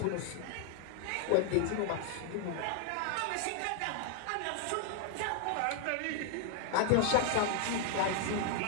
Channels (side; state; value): both; different; correlation 0.00